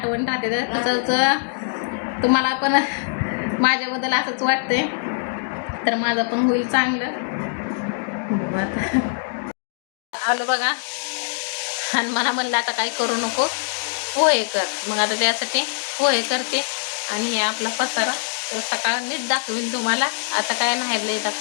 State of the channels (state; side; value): silent; right; digital silence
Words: राहते. तर तसंच तुम्हाला पण माझ्याबद्दल असंच वाटतंय, तर माझं पण होईल चांगलं. आलं बघा, आणि मला म्हणलं आता काही करू नको, पोहे कर. मग आता त्यासाठी पोहे करते. आणि हे आपला पसारा तर सकाळ नीट दाखवीन तुम्हाला. आता काय नाही लय